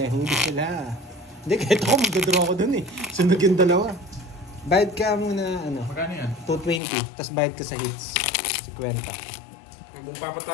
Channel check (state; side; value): drops out; right; at 6.8 s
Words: Huli sila. Hindi, kahit ako magdadraw ko doon eh. Sunog yung dalawa. Bayad ka muna, ano, Magkano yan? 220. Tapos bayad ka sa hits. 50. Kung